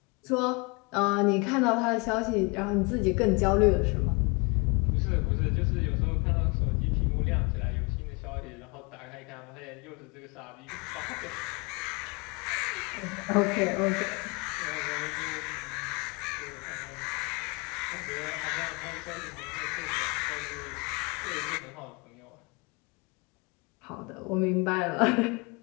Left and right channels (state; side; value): quieter; right; 29.4 dB